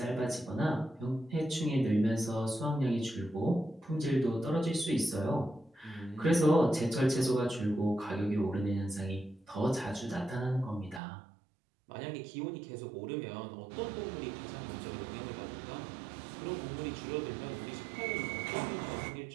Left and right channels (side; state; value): left; drops out; at 11.0 s